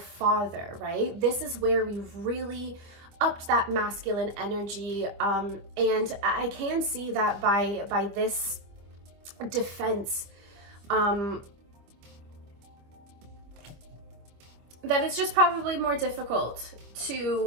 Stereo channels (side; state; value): left; late; 25 ms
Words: right? This is where we've really upped that masculine energy. And I can see that by this defense, that it's just probably more difficult